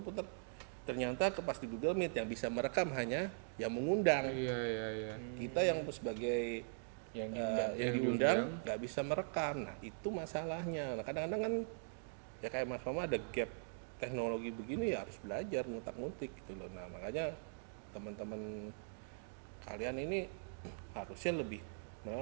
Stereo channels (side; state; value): left; silent; digital silence